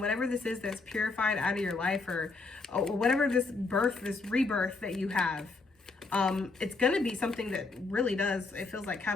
whatever this is that's purified out of your life, or whatever this birth, this rebirth that you have. It's going to be something that really does, it feels like,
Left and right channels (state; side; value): quieter; right; 3.8 dB